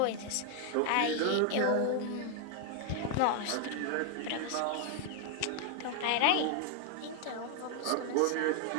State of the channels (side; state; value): both; different; correlation 0.00